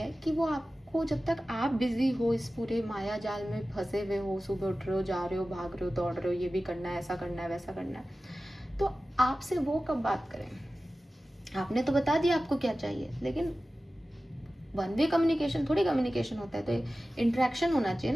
कि वो आपको, जब तक आप बिजी हो, इस पूरे माया जाल में फंसे हुए हो, सुबह उठ रहे हो, जा रहे हो, भाग रहे हो, दौड़ रहे हो, ये भी करना है, ऐसा करना है, वैसा करना है, तो आपसे वो कब बात करें? आपने तो बता दिया आपको क्या चाहिए, लेकिन वन वे कम्युनिकेशन थोड़ी कम्युनिकेशन होता है, तो इंटरेक्शन होना चाहिए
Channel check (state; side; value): normal; both; correlation 0.95